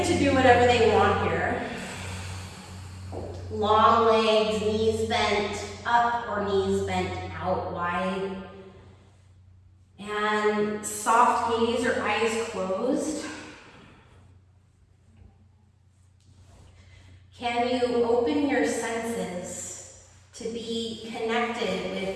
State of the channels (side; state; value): both; identical; correlation 1.00